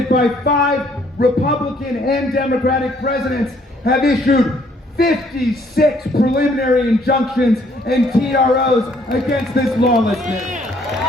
by 5 Republican and Democratic presidents have issued 56 preliminary injunctions and TROs against this lawlessness.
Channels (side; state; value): both; normal; correlation 0.64